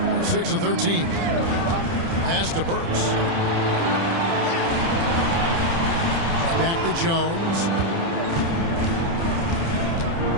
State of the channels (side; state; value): left; late; 30 ms